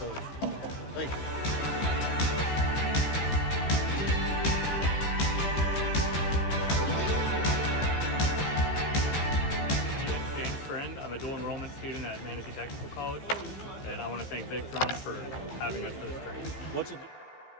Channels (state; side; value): late; right; 15 ms